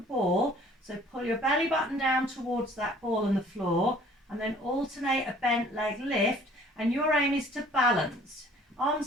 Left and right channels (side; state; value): both; normal; correlation 0.54